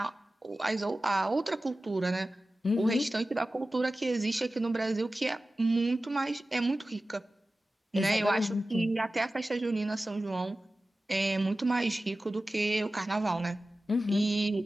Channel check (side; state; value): both; normal; correlation 0.95